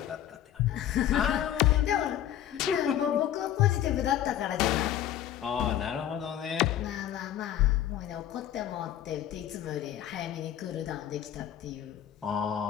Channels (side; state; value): right; quieter; 11.2 dB